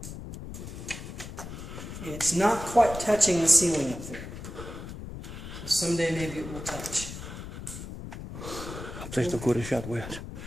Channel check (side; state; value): left; noise; rumble, 10 dB below the sound